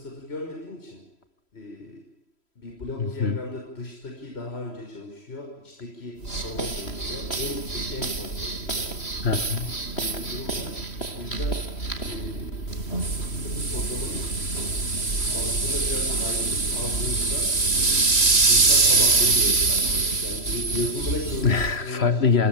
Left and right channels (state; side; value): late; right; 3.1 ms